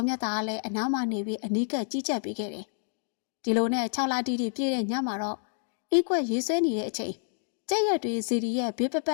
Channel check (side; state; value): right; silent; digital silence